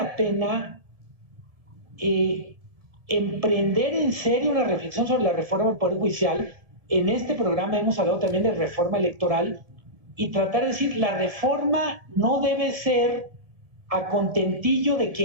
pena emprender en serio una reflexión sobre la reforma del Poder Judicial. En este programa hemos hablado también de reforma electoral y tratar de decir, la reforma no debe ser a contentillo de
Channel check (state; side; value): late; left; 1.7 ms